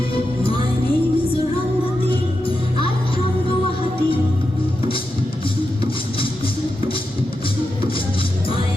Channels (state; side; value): normal; both; correlation 0.88